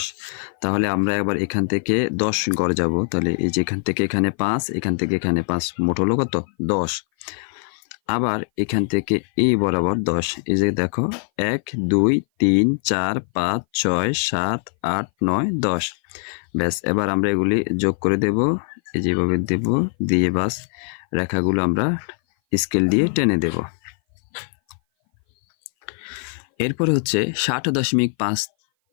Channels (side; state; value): right; silent; 58 dB below the other